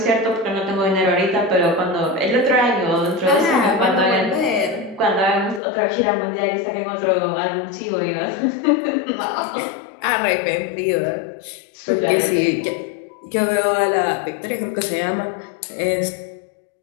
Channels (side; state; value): right; drops out; at 5.6 s